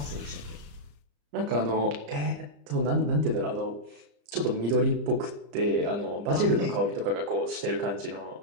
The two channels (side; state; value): left; late; 34 ms